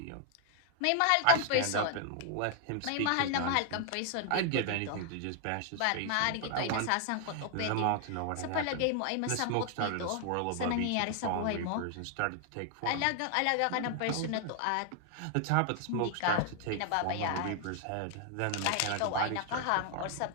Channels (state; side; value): different; both; correlation 0.00